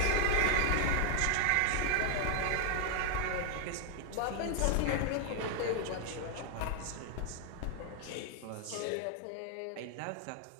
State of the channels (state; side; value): different; both; correlation 0.00